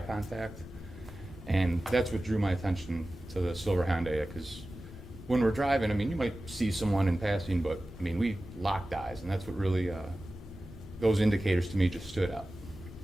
And that's what drew my attention to the silver Hyundai, because when we're driving, I mean, you might see someone in passing, but I mean, we locked eyes, and that's what really, those indicators to me just stood out.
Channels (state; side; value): normal; both; correlation 0.96